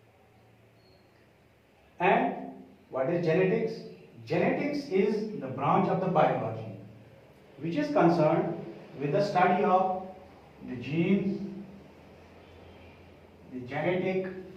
And what is genetics? Genetics is the branch of the biology which is concerned with the study of the genes, the genetic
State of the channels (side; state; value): both; identical; correlation 1.00